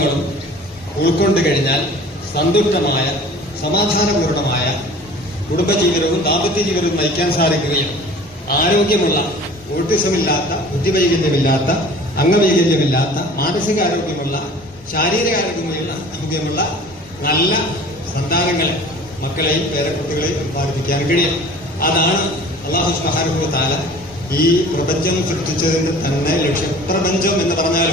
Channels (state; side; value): normal; both; correlation 0.45